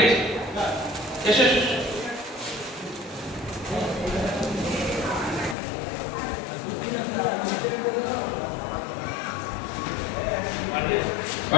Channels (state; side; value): drops out; right; at 5.6 s